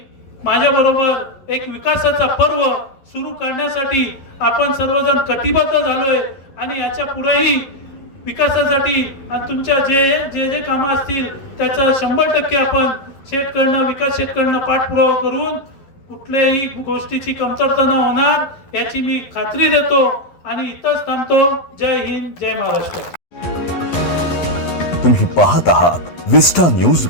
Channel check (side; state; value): right; late; 11 ms